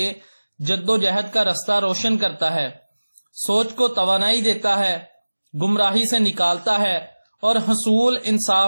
جد و جہد کا رستہ روشن کرتا ہے، سوچ کو توانائی دیتا ہے، گمراہی سے نکالتا ہے اور حصول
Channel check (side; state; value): both; inverted; correlation -1.00